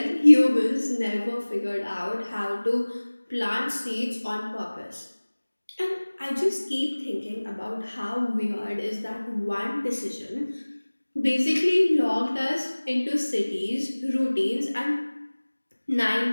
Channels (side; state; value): both; inverted; correlation -1.00